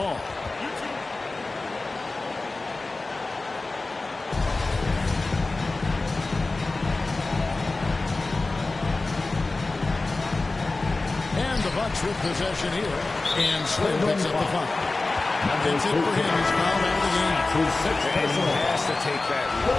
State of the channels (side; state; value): right; quieter; 3.3 dB